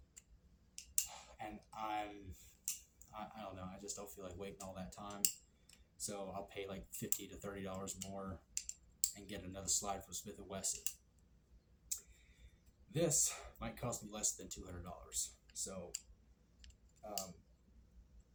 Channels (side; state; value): both; identical; correlation 1.00